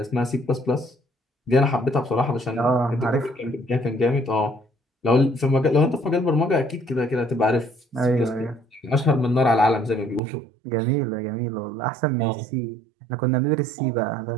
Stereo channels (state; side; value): drops out; left; at 10.2 s